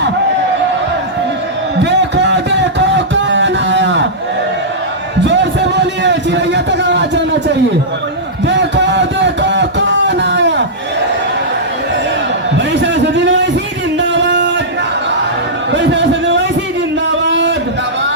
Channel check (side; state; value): both; normal; correlation -0.12